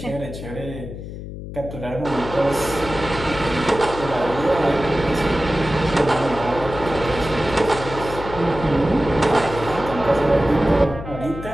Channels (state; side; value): noise; left; hum, 10 dB below the sound